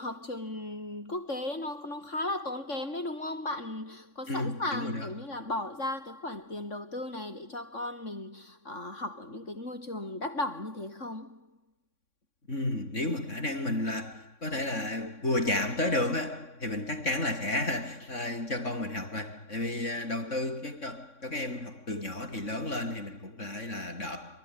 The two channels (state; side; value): late; right; 3.6 ms